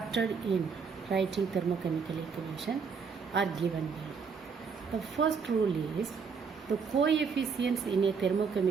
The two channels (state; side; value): quieter; left; 5.7 dB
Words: in writing thermochemical equation are given below. The first rule is the coefficients in a